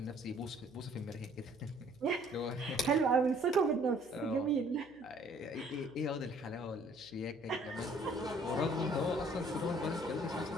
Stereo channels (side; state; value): right; noise; hum, 28 dB below the sound